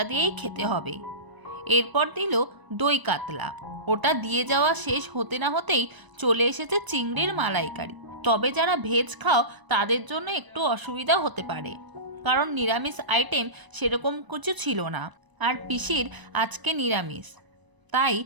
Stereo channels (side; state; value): left; late; 1.0 ms